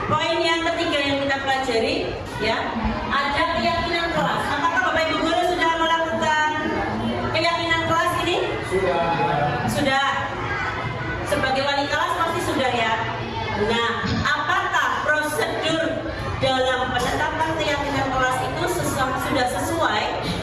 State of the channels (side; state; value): both; identical; correlation 1.00